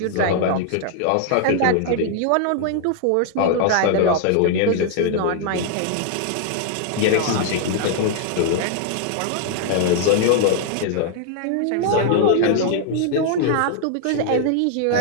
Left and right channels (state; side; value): different; both; correlation -0.01